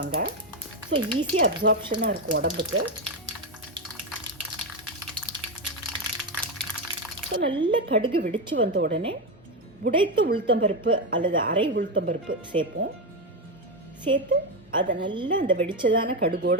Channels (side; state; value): both; normal; correlation 0.10